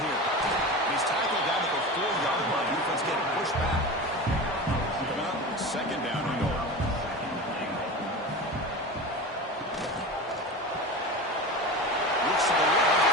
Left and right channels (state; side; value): normal; both; correlation 0.29